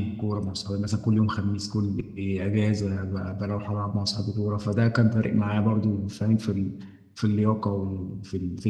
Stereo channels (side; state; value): both; identical; correlation 1.00